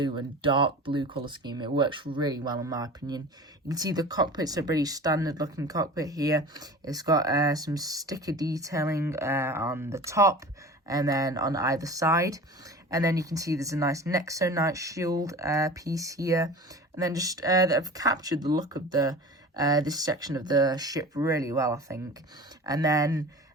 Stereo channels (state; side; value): normal; both; correlation 0.37